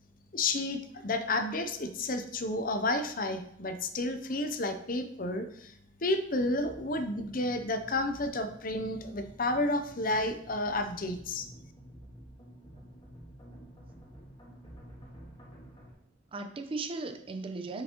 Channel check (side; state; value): both; normal; correlation 0.13